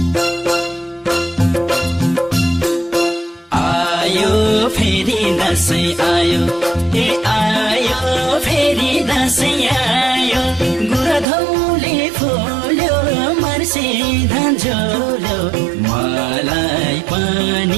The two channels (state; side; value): drops out; left; at 11.2 s